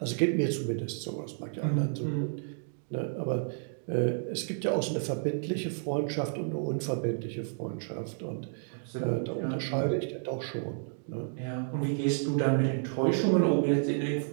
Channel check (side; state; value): left; silent; digital silence